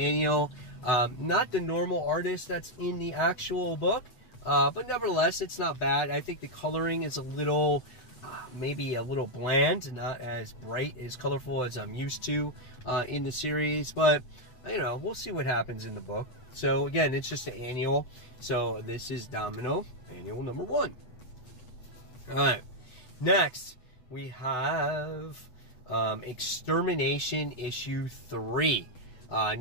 Not the normal artist that's in the actual book, but nevertheless, it's not bad. I think the coloring is a little, maybe a little bland, not as bright, as colorful as I'm used to in the series, but you know, we'll see what happens in the book. So again, it's just an annual. So this is Domino, annual number 1. All right, next we have Extermination issue 3.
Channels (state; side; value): late; right; 8.1 ms